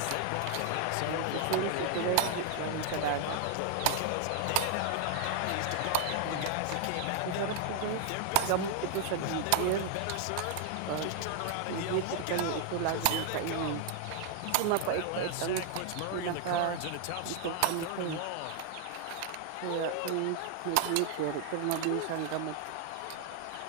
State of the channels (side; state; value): both; different; correlation 0.00